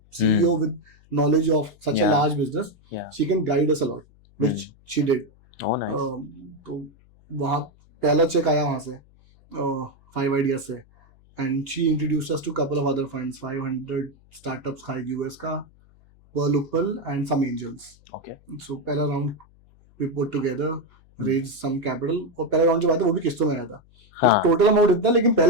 CEO with knowledge of such a large business, she can guide us a lot, which she did. Oh, nice. तो वहाँ पहला चेक आया वहाँ से 5 Ideas से, and she introduced us to couple of other funds, 500 startups था US का, Pearl Uppal and some angels. Okay. So पहला round we put together, raised some capital, और पहला round जब आया था वो भी किस्तों में आया था. हाँ. टोटल अमाउंट इतना, लेकिन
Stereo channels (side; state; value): left; noise; hum, 28 dB below the sound